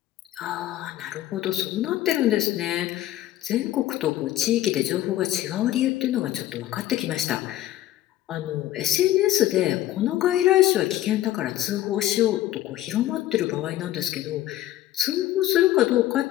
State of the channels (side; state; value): right; quieter; 14.0 dB